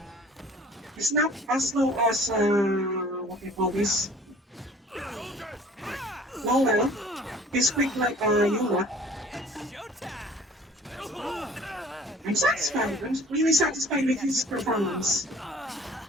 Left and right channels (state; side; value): normal; both; correlation 0.50